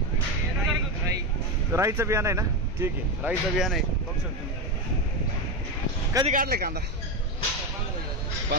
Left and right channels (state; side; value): normal; both; correlation 0.14